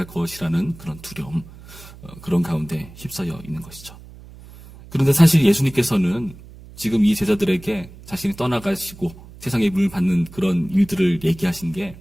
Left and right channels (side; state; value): right; noise; hum, 19 dB below the sound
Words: 것이라는 그런 두려움, 그런 가운데 휩싸여 있는 것이죠. 그런데 사실 예수님께서는 지금 이 제자들에게 자신이 떠나가시고 세상의 미움을 받는 그런 일들을 얘기하신 게